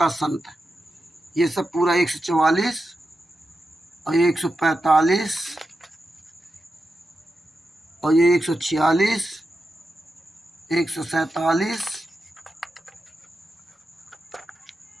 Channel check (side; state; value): both; normal; correlation 0.89